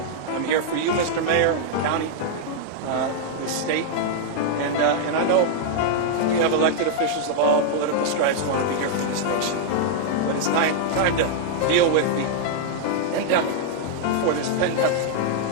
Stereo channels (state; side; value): different; both; correlation -0.01